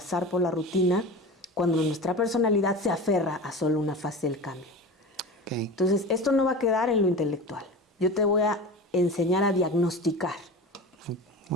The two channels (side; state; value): both; normal; correlation 0.31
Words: por la rutina cuando nuestra personalidad se aferra a solo una fase del cambio. Okay. Entonces, esto no va a quedar en lo intelectual. Yo te voy a enseñar a diagnosticar.